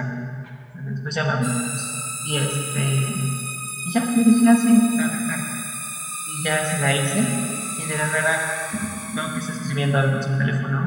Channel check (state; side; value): identical; both; correlation 1.00